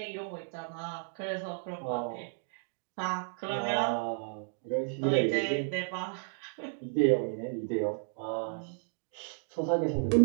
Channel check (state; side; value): silent; left; digital silence